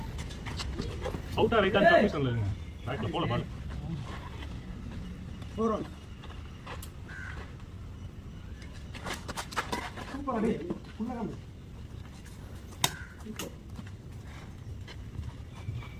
அவுட்டா ரைட்டா தப்பு சொல்லுங்க ரைட்ல போல பால் போறோம் சூப்பர் அடி புள்ளகம்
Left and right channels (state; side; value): identical; both; correlation 1.00